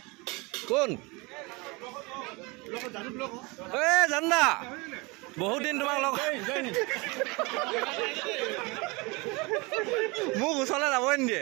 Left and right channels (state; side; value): quieter; left; 26.4 dB